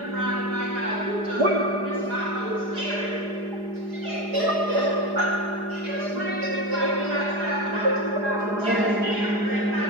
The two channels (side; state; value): left; late; 4.9 ms